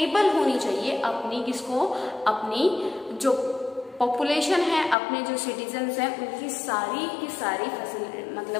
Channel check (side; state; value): right; drops out; at 5.0 s